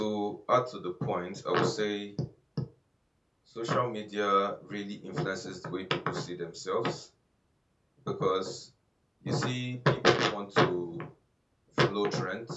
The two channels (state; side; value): identical; both; correlation 1.00